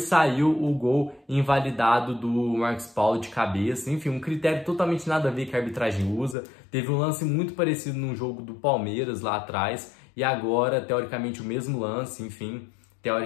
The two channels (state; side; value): drops out; right; at 6.4 s